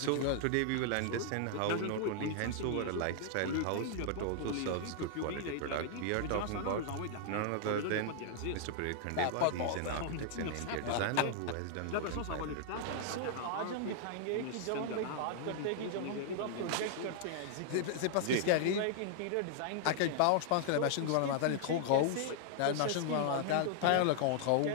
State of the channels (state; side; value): different; both; correlation -0.01